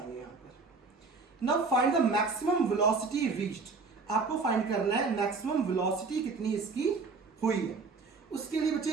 यहां पर. Now find the maximum velocity reached. आपको फाइंड करना है मैक्सिमम वेलोसिटी कितनी इसकी हुई है. उसके लिए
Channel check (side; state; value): left; quieter; 4.3 dB